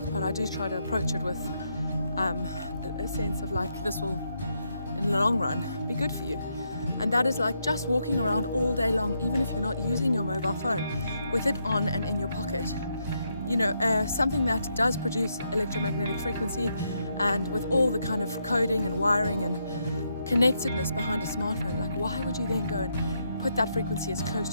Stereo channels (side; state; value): both; inverted; correlation -0.79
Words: but I do try to approach it with a sense of like, this will in the long run be good for you. And that is like just walking around all day long, even if you're not using your mobile phone, with it on and in your pocket. Something that does produce electromagnetic frequency, and with all the kind of coding and wiring and connectedness behind a smartphone, like why would you then go and put that frequency as close